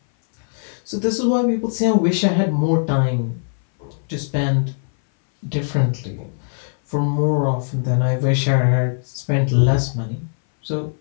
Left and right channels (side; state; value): right; silent; 60 dB below the other